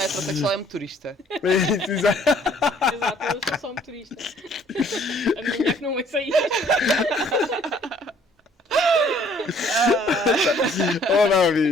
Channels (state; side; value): normal; both; correlation 0.60